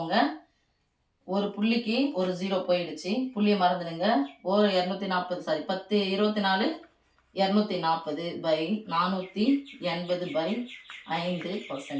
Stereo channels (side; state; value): both; identical; correlation 1.00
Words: ஒரு புள்ளிக்கு ஒரு 0 போயிடுச்சு, புள்ளியை மறந்துடுங்க. ஒரு 240 சாரி 10 24